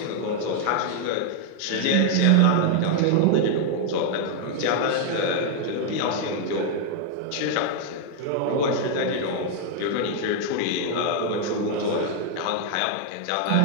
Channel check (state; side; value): different; both; correlation 0.00